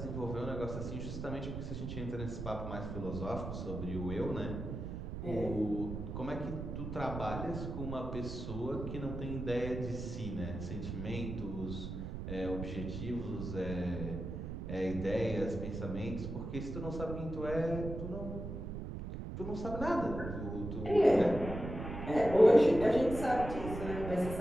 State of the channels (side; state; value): right; noise; rumble, 6 dB below the sound